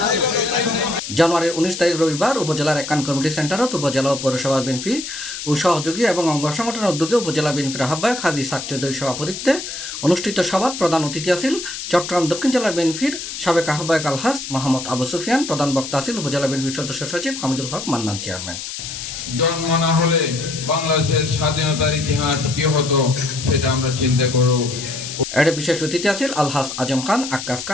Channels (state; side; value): noise; left; hiss, 8 dB below the sound